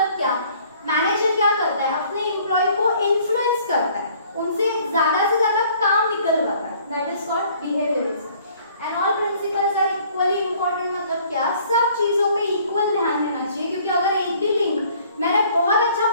क्या? मैनेजर क्या करता है? अपने एम्प्लॉय को इन्फ्लुएंस करता है, उनसे ज्यादा से ज्यादा काम निकलवाता है, that is called behaviourism. And all principles are equally important मतलब क्या? सब चीजों पे इक्वल ध्यान देना चाहिए, क्योंकि अगर एक भी लिंक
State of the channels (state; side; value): inverted; both; correlation -0.57